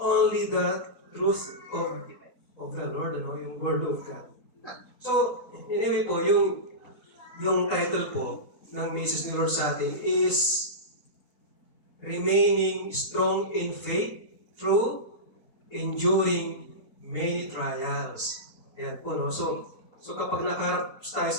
the truth of the Lord, yung Word of God. So, anyway po, yung title po ng message ni Lord sa atin is Remaining Strong in Faith Through Enduring Many Trials. Ayan po, no? So kapag nakaharap tayo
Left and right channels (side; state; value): right; late; 3.8 ms